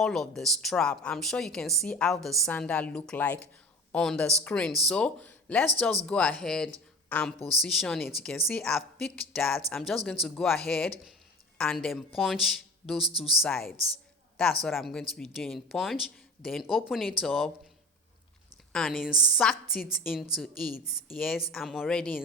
of the strap. I'm sure you can see how the sandal look like on the screen. So let's just go ahead and position it. You can see I've picked that. I'm just going to go ahead and then punch those two sides. That's what I'm going to be doing. Punch, then open it up and insert it into it. Yes, I'm already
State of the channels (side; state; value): both; normal; correlation 0.36